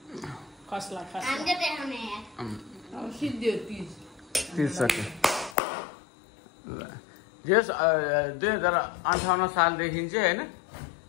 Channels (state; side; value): drops out; right; at 5.6 s